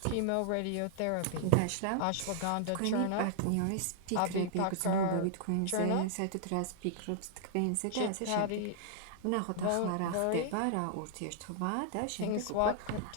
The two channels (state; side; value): different; both; correlation 0.00